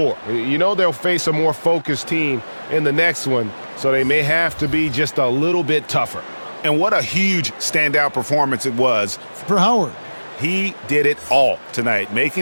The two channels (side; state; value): both; inverted; correlation -1.00